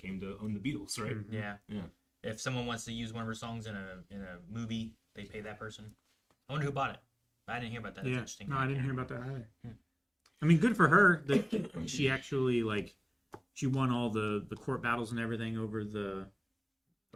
to own the Beatles, right? Mhm. Yeah. Yeah. If someone wants to use one of her songs in a movie, they pay that person. I wonder who bought it. I didn't hear about that. That's Yeah. interesting. No, I didn't hear about that either. Hmm. I mean, good for her that she actually like she won all the court battles and everything over the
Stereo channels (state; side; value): identical; both; correlation 1.00